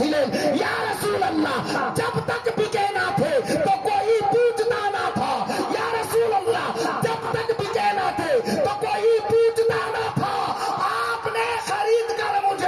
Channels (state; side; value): identical; both; correlation 1.00